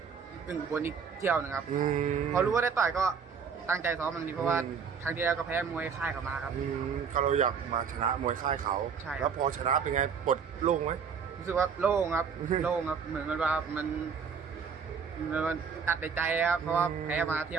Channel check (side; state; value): left; quieter; 6.4 dB